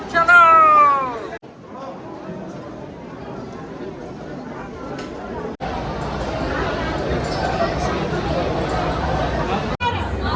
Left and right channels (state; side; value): identical; both; correlation 1.00